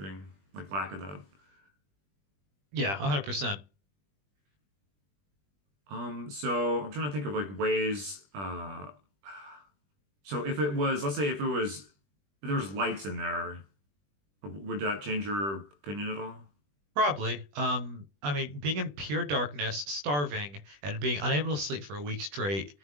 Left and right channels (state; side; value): late; left; 20 ms